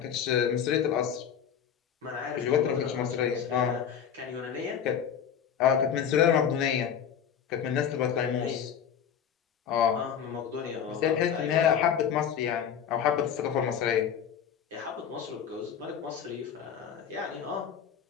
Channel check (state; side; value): quieter; right; 8.3 dB